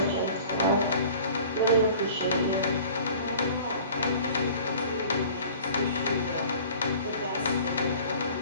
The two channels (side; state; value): both; inverted; correlation -0.46